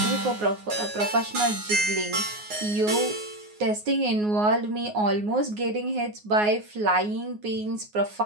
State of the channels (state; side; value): late; left; 9.5 ms